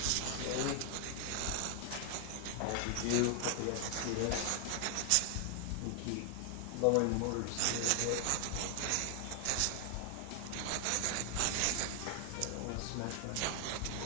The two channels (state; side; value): different; both; correlation 0.00